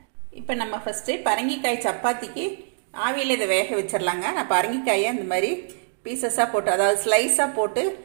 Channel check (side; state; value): left; silent; digital silence